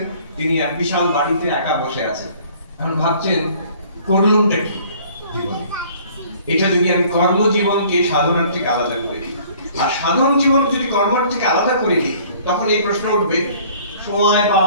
তিনি এক বিশাল বাড়িতে একা বসে আছেন। এখন ভাবছেন, করলুমটা কি জীবনে? এটা যদি আমি কর্মজীবনকে সাধনার থেকে আলাদা করে দিই, আর সাধন জীবন যদি কর্মের থেকে আলাদা করে দিই, তখন এই প্রশ্ন উঠবে, সময়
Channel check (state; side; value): inverted; both; correlation -0.54